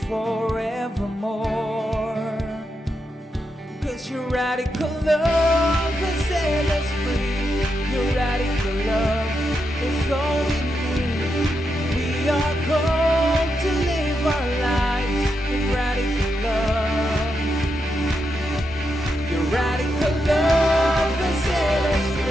forevermore. 'Cause your radical love has set us free. Your radical love is all we need. We are called to live our lives in radical love. Your radical love has set us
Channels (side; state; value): both; normal; correlation 0.84